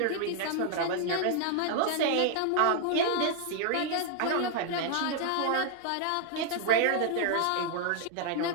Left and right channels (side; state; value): both; different; correlation 0.00